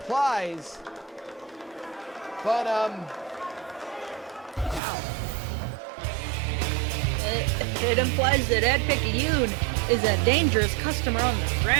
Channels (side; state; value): left; drops out; at 4.8 s